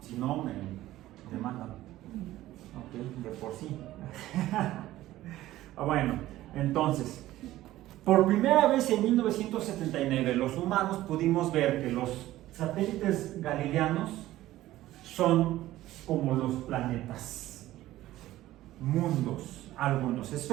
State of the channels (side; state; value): left; quieter; 15.4 dB